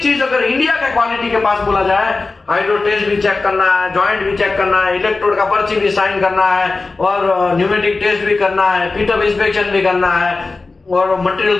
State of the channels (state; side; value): quieter; right; 3.7 dB